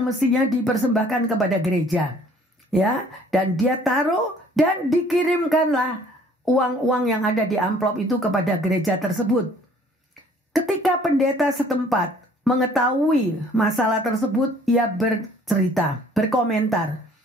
mestinya dipersembahkan kepada gereja. Ya, dan dia taruh dan dikirimkanlah uang-uang yang ada di amplop itu kepada gereja tersebut. Ketika pendeta setempat mengetahui masalah tersebut, ia bercerita, berkomentar.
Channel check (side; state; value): both; normal; correlation 0.56